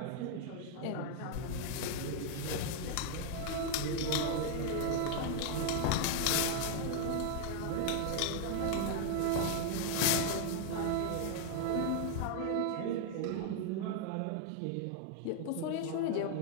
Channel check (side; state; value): both; different; correlation 0.00